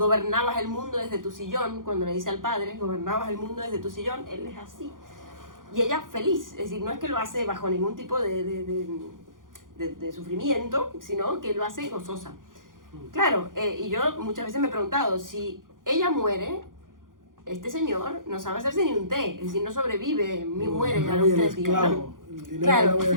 el mundo desde tu sillón, cuando le dice al padre, gobernabas el mundo desde tu sillón, él es así. Y ella feliz, es decir, no es que lo hace bajo ningún tipo de sufrimiento, sino que lo hace gozosa. Claro, y yo muchas veces me he preguntado, si ella muere, este señor no sabe hacerse ni un té, es decir, no sobrevive, muere a los 3 días, ¿no? Claro,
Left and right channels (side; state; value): left; late; 0.90 ms